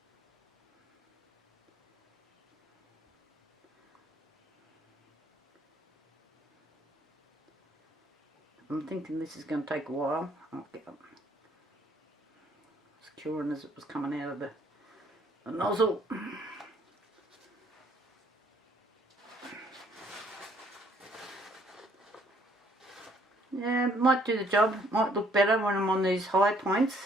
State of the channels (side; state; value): both; normal; correlation 0.64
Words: I'm thinking this is going to take a while. Okay. It's curing as it was coming out of the nozzle. Yeah, it might do the job. Might look better when I'm on these high points.